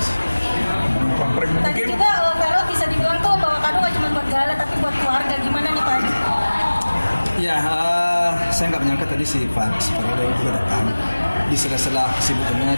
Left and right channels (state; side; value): inverted; both; correlation -1.00